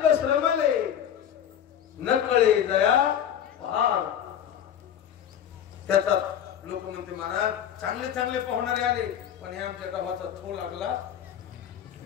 श्रमले न कळे दया पार त्याचा लोक म्हणते महाराज चांगले चांगले पाहुणारे आले पण हे आमच्या गावाचा थो लागला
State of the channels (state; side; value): quieter; right; 9.6 dB